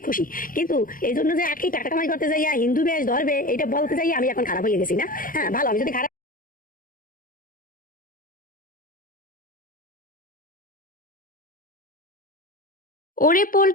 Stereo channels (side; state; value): right; late; 0.40 ms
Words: খুশি। কিন্তু এই জন্য যে আকি টাকা কামাই করতে যাইয়া হিন্দু বেশ ধরবে, এটা বলতে যাই আমি এখন খারাপ হয়ে গেছি না? হ্যাঁ ভালো, আমি যদি খারাপ ওরে